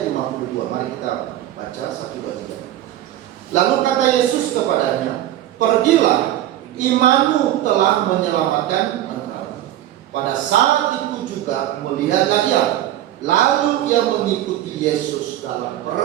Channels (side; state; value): left; quieter; 13.1 dB